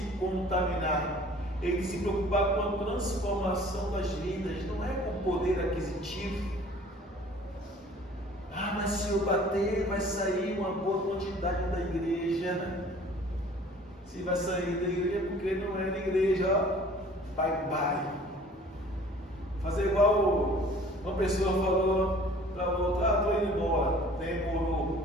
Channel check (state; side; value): normal; both; correlation 0.50